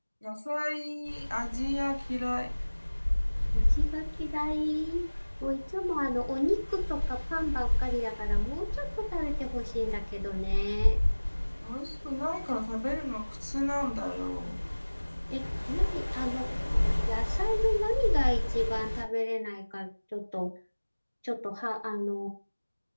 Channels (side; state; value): both; inverted; correlation -1.00